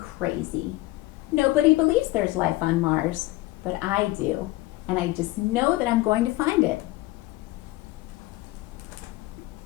Nobody believes there's life on Mars, but I do, and I just know that I'm going to find it.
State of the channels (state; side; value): quieter; right; 18.7 dB